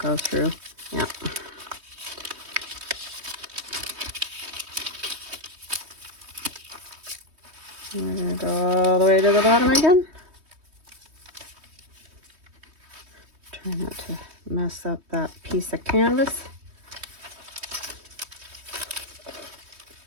through. Yeah. We're going to go all the way to the bottom again. Try not to mess up that piece of canvas.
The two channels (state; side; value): late; left; 3.2 ms